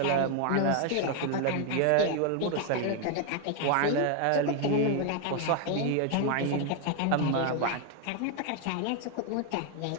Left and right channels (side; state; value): both; different; correlation 0.01